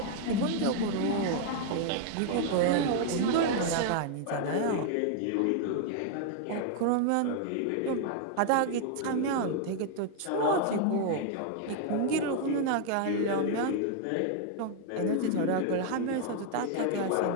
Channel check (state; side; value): different; both; correlation 0.00